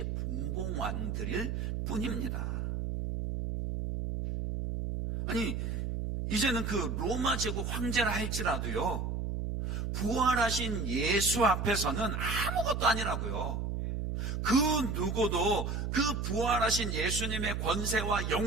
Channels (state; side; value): noise; right; hum, 2 dB below the sound